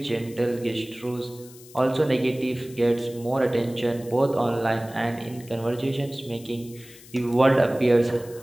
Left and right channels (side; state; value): left; noise; hiss, 21 dB below the sound